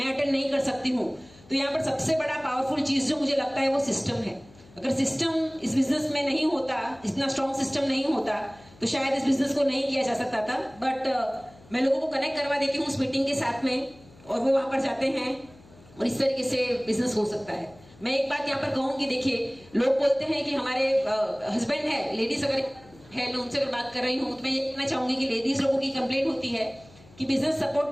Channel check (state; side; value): noise; left; hum, 24 dB below the sound